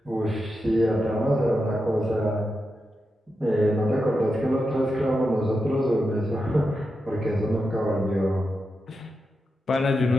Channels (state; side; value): normal; both; correlation 0.88